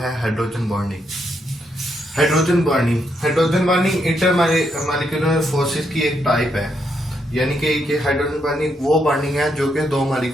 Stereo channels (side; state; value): both; normal; correlation 0.78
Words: hydrogen bonding. Hydrogen bonding inter molecular forces की एक टाइप है, यानी कि हाइड्रोजन बॉन्डिंग वो बॉन्डिंग है जो कि दो